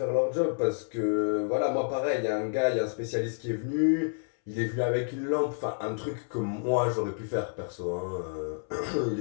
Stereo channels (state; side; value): silent; right; 58 dB below the other